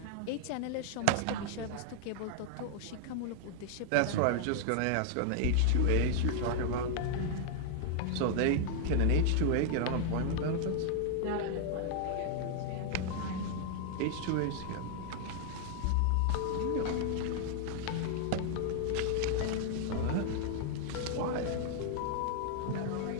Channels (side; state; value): both; different; correlation 0.00